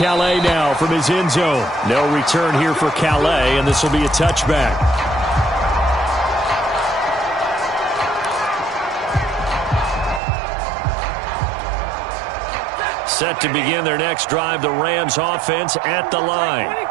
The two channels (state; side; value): drops out; left; at 10.2 s